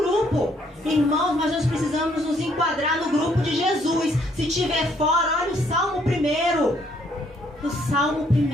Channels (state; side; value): normal; both; correlation 0.67